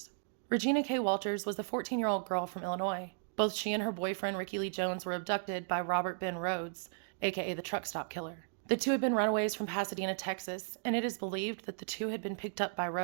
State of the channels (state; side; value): silent; left; digital silence